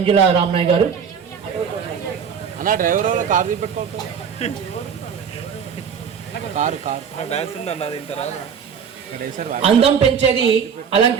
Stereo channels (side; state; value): left; quieter; 7.1 dB